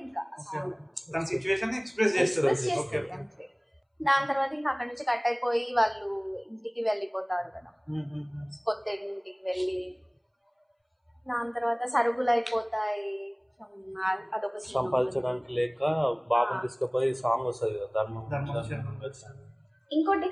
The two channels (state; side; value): identical; both; correlation 1.00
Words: ఇంకా. దాని తర్వాత ఇంకా అక్కడ నుంచి కట్ అయిపోయి వాళ్ళు ఇంటికి వెళ్ళిపోతారు కదా, కొత్త ఇంటికి వెళ్ళి. దాని తర్వాత సరుకులు అయిపోతాయి, అదొక సంపాదించడానికి లేక బాబుని తీసుకుపోయి సాంగ్ వస్తుంది కదా, ధర్మం. ఇంకోటి